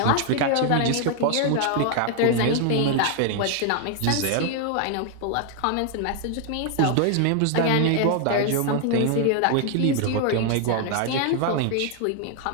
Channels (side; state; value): both; different; correlation 0.00